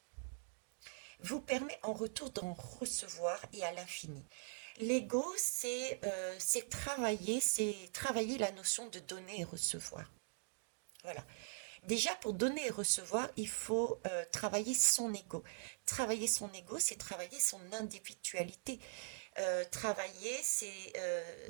vous permet en retour d'en recevoir et à l'infini. L'ego, c'est travailler la notion de donner et recevoir. Voilà. Déjà, pour donner et recevoir, il faut travailler son ego. Travailler son ego, c'est travailler son individualité.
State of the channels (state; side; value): silent; left; digital silence